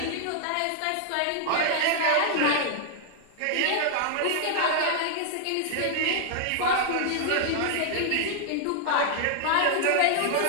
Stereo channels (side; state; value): both; different; correlation -0.01